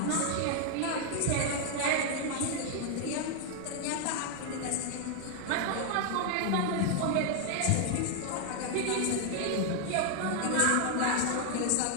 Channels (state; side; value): different; both; correlation 0.00